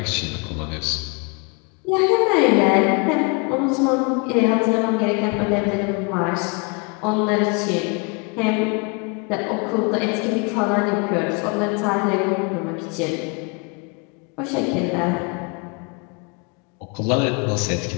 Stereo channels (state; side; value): quieter; right; 32.3 dB